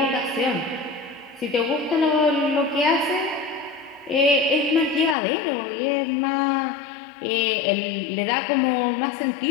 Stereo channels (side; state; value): right; drops out; at 5.2 s